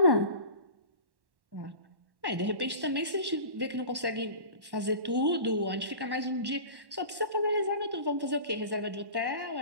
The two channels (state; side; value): late; left; 1.1 ms